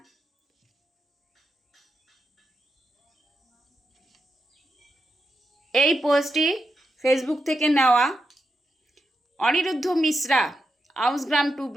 এই পোস্টটি ফেসবুক থেকে নেওয়া। অনিরুদ্ধ মিশ্রা, আউসগ্রাম 2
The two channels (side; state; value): both; normal; correlation 0.86